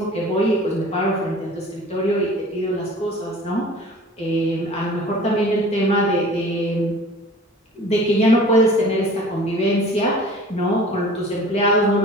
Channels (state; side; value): normal; both; correlation 0.45